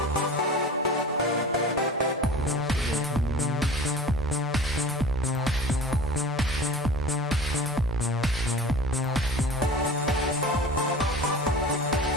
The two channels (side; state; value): both; normal; correlation 0.38